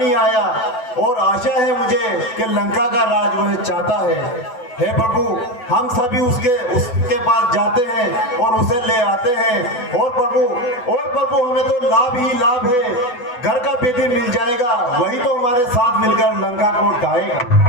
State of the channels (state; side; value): late; right; 8.0 ms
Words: ही आया और आशा है मुझे कि लंका का राज वह चाहता है। हे प्रभु, हम सभी उसके पास जाते हैं और उसे ले आते हैं। और प्रभु हमें तो लाभ ही लाभ है, घर का बेदी मिल जाएगा, वही तो हमारे साथ मिलकर लंका को ढाएगा।